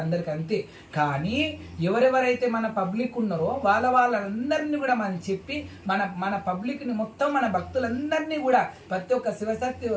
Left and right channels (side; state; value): both; identical; correlation 1.00